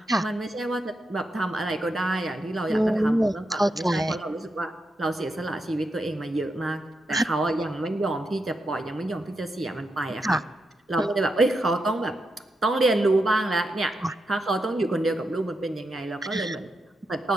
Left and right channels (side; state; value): both; normal; correlation 0.85